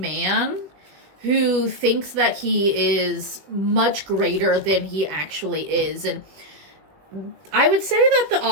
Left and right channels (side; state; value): left; late; 21 ms